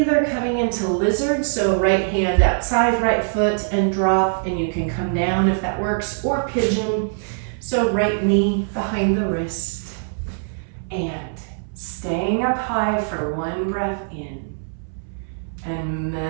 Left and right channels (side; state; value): left; silent; 64 dB below the other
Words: coming into lizard, so right hand outside, right foot, and drop, and you can come down if that works, or pigeon, so right knee behind the wrist. And staying up high for one breath in, and